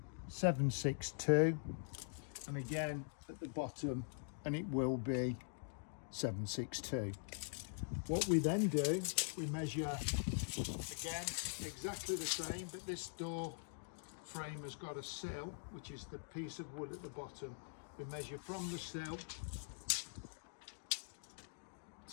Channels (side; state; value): right; silent; digital silence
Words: 762, and again at the bottom, and it will be 762. What we then do, we measure again exactly the same, but this door frame has got a sill, which is the piece of wood at the bottom. We measure from the sill